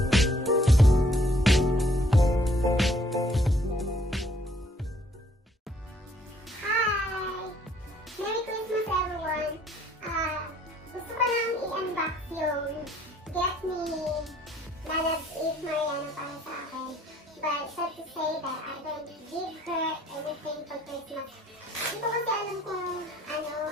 Christmas everyone! Gusto ko lang i-unbox yung gift ni Mariano para sa akin. But sad to say that I don't give her anything for Christmas. Hindi ko kasi alam kung ano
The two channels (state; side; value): normal; both; correlation 0.63